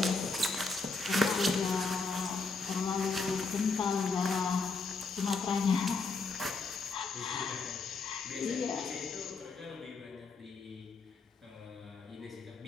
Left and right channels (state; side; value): quieter; right; 4.1 dB